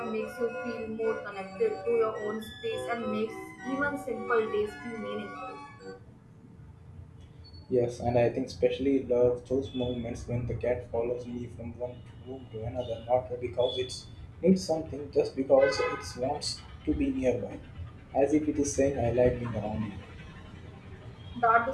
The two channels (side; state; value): both; identical; correlation 1.00